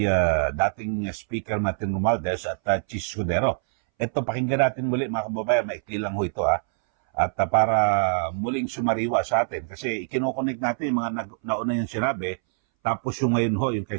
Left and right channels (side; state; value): left; silent; 61 dB below the other